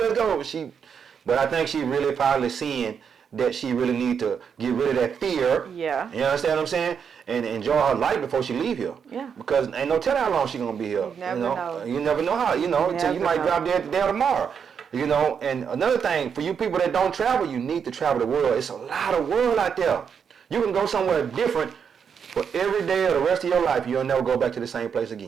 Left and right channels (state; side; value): quieter; left; 7.0 dB